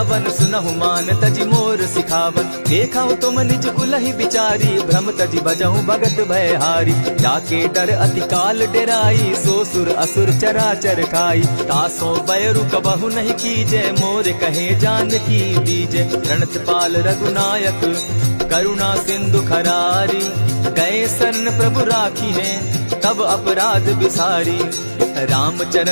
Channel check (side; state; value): both; inverted; correlation -1.00